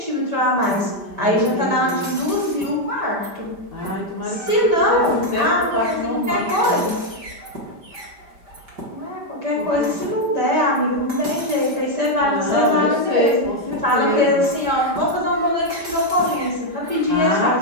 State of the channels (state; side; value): late; left; 5.1 ms